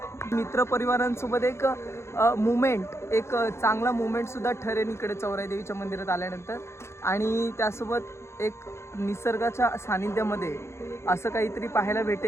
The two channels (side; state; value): right; late; 0.13 ms